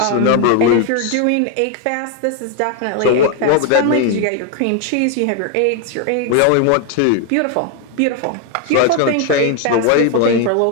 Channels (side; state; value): both; different; correlation 0.00